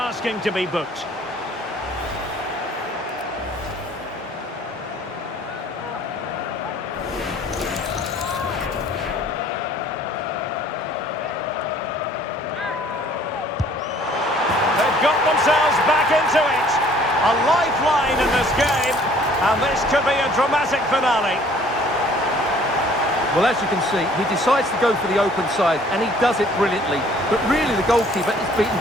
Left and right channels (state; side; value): normal; both; correlation 0.56